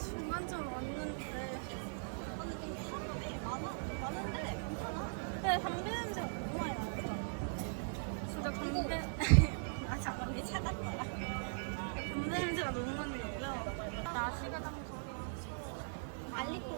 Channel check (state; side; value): silent; left; digital silence